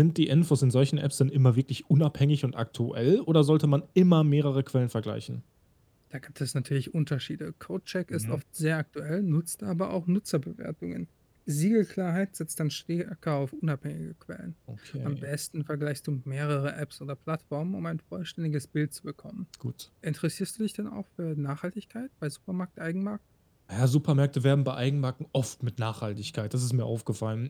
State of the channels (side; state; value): both; identical; correlation 1.00